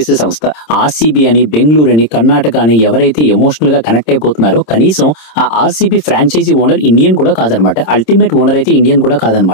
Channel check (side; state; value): right; late; 26 ms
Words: సంస్థ. ఆర్సీబీ అని, బెంగళూరు అని, కర్ణాటక అని ఎవరైతే ఎమోషనల్ గా కనెక్ట్ అయిపోతున్నారో కనీసం ఆ ఆర్సీబీ ఫ్రాంచైజీ ఓనర్ ఇండియన్ కూడా కాదనమాట. అల్టిమేట్ ఓనర్ అయితే ఇండియన్ కూడా